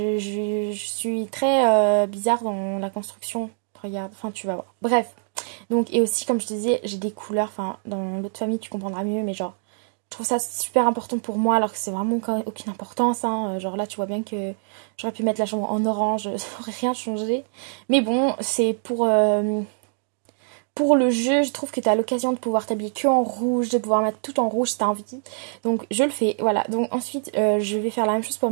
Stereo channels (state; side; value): silent; left; 60 dB below the other